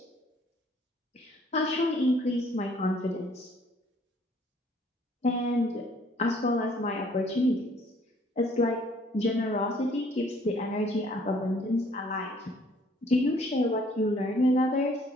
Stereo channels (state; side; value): normal; both; correlation 0.60